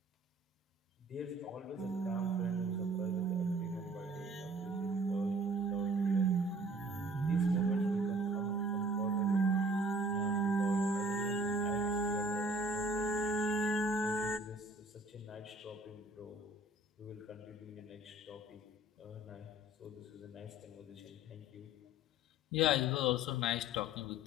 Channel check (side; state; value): both; normal; correlation 0.52